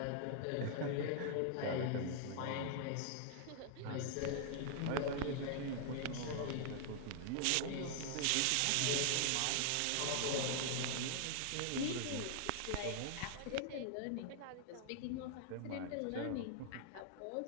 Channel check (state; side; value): different; both; correlation 0.00